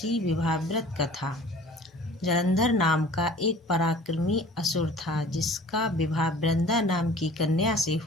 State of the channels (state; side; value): normal; both; correlation 0.46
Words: विवाह व्रत कथा। जलंधर नाम का एक पराक्रमी असुर था, जिसका विवाह वृंदा नाम की कन्या से